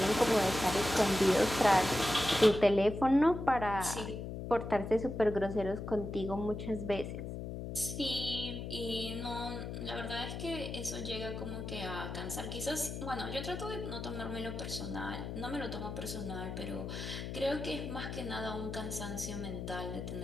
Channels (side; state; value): left; noise; hum, 6 dB below the sound